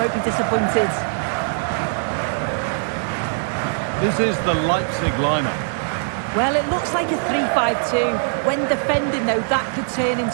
be disappointed. This is the Leipzig lineup. Well, it looks like a 3-5-2. When defending, though, that could turn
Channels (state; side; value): silent; left; digital silence